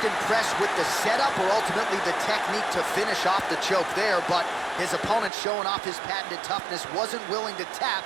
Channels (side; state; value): left; drops out; at 5.3 s